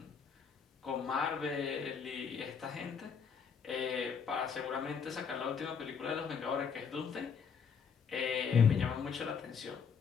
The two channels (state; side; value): quieter; right; 6.3 dB